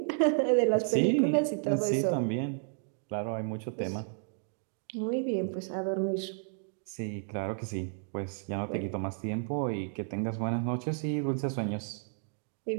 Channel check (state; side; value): silent; left; 56 dB below the other